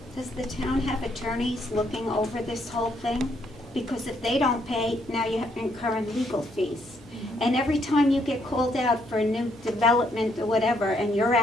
Does the town have attorneys looking over this whole thing? Because if they don't pay, now you have to incur legal fees. And every time you get called out for a new development or whatever, and you're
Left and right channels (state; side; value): normal; both; correlation 0.72